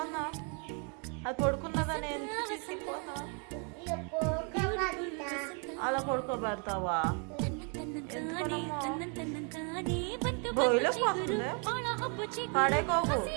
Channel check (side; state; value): left; quieter; 36.7 dB